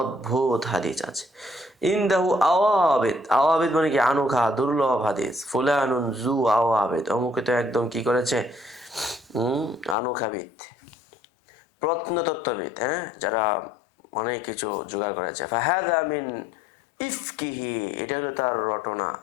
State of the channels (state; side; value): drops out; right; at 10.0 s